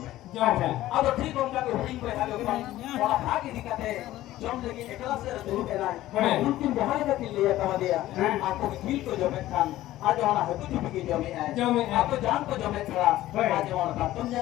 me. जो है। Ado ठीक उनका को हुडिंग पे हालो kan wala भागी दिखाते जम लगी एकला से दूर पे ना हाँ। उनकी बहाई का लिए कहा दिया हाँ। आपको झील को जो में खान आज वाला है कुछ भी जो में है जो में है। आपको जान को जो में खड़ा हाँ। आज वाला का तुम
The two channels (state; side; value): quieter; right; 15.0 dB